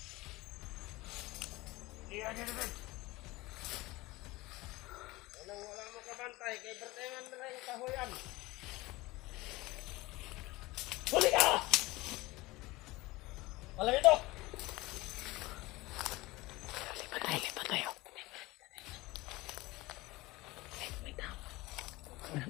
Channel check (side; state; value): right; quieter; 20.9 dB